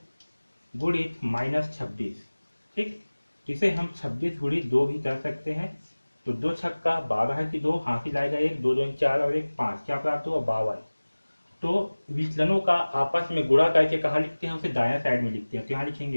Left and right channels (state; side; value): inverted; both; correlation -1.00